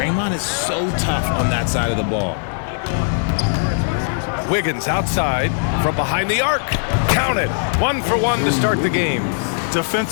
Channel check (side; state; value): right; silent; digital silence